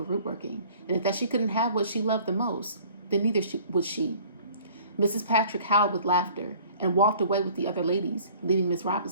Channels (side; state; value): both; inverted; correlation -0.51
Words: root working and that she couldn't have what she loved the most, then neither would she. Mrs. Patrick howled with laughter and walked away with the other ladies, leaving Miss